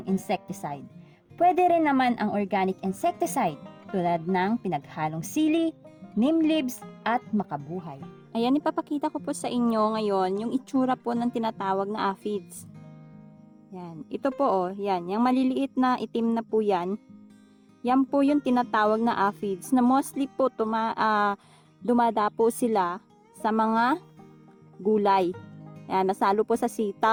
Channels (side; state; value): both; identical; correlation 1.00